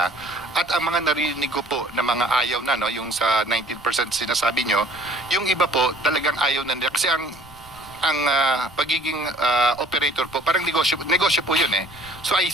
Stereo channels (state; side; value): noise; right; rumble, 25 dB below the sound